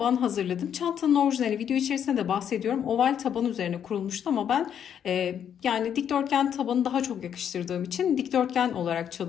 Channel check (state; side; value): quieter; right; 8.8 dB